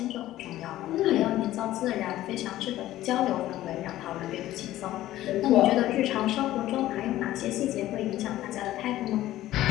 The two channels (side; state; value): right; quieter; 14.6 dB